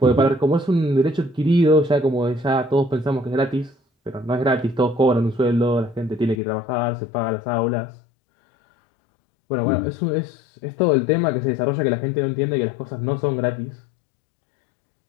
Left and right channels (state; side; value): drops out; right; at 6.4 s